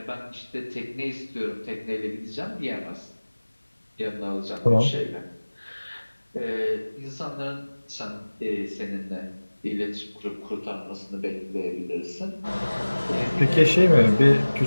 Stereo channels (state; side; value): inverted; both; correlation -1.00